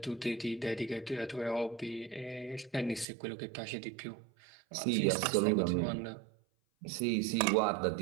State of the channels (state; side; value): drops out; left; at 3.1 s